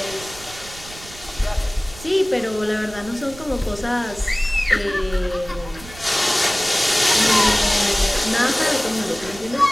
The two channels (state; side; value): noise; right; rumble, 18 dB below the sound